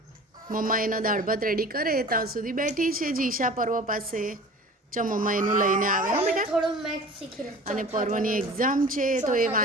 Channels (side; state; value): both; normal; correlation 0.41